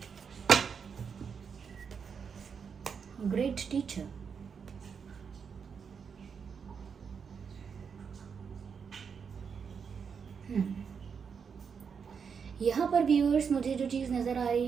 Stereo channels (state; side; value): quieter; left; 6.4 dB